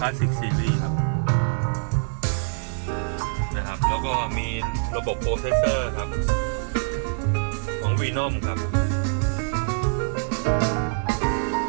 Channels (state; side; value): silent; left; digital silence